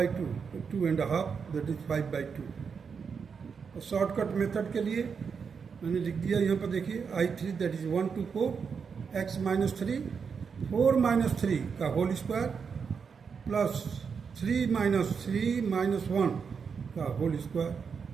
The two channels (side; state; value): left; quieter; 6.0 dB